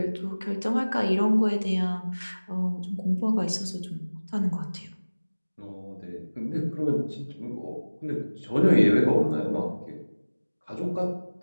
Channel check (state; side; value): inverted; both; correlation -1.00